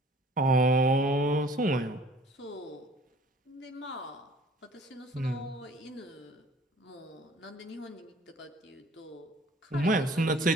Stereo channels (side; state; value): both; normal; correlation 0.52